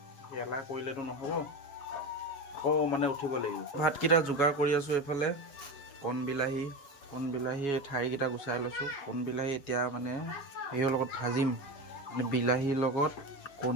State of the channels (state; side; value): late; right; 7.2 ms